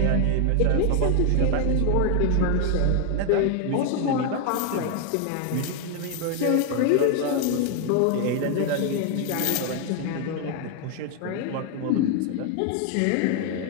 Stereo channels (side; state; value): both; different; correlation 0.01